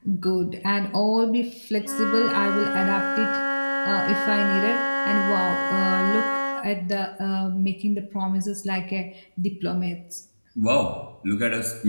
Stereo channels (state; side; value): inverted; both; correlation -1.00